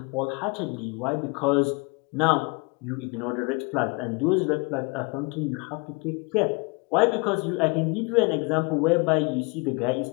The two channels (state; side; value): quieter; right; 30.7 dB